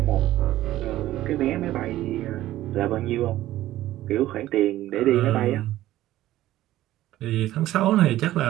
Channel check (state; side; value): quieter; left; 14.8 dB